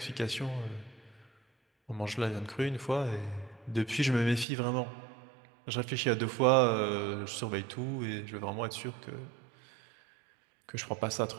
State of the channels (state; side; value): drops out; left; at 4.5 s